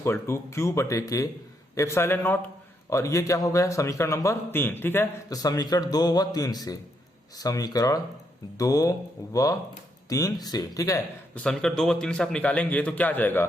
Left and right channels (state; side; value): normal; both; correlation 0.77